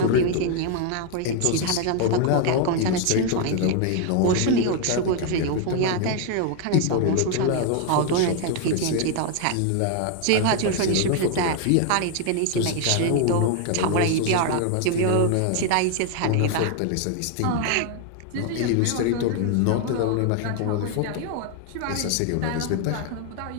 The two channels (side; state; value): both; different; correlation 0.01